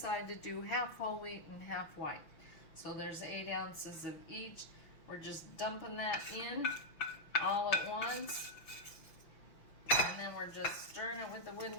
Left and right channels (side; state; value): right; late; 5.9 ms